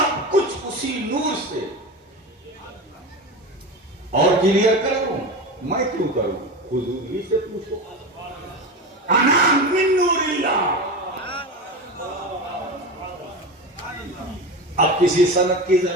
کچھ اسی نور سے. اور کلیئر کروں میں کیوں کروں, حضور ہی سے پوچھو. انا من نور اللہ. اب کسی سند کی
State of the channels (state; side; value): normal; both; correlation 0.25